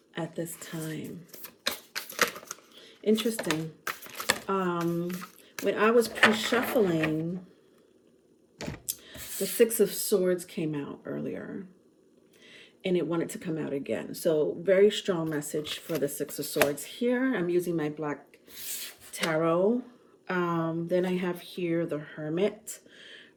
at this time? Interesting. When I was pre-shuffling, the Six of Swords came out earlier, and it wanted to come out again. So very strong message for the Six of Swords here. I'm using my black tarot. Then I have here the Hermit,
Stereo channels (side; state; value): both; identical; correlation 1.00